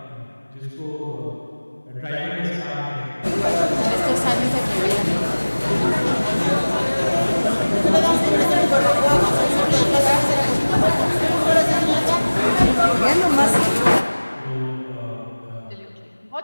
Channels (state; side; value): inverted; both; correlation -1.00